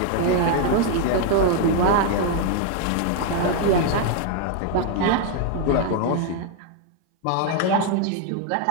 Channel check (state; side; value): different; both; correlation 0.00